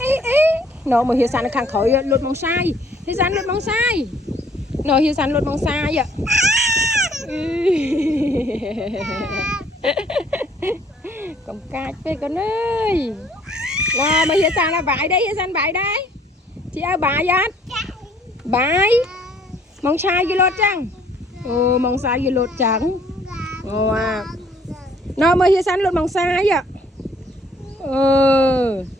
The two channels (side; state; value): both; normal; correlation 0.61